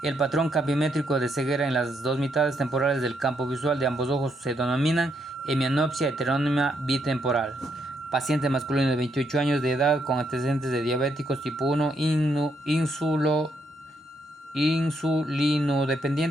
El patrón campimétrico de ceguera en las dos mitades temporales del campo visual de ambos ojos se denominan hemianopsia heterónima bitemporal. Paciente masculino de 28 años de edad con antecedentes de diabéticos tipo 1,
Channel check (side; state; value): both; normal; correlation 0.76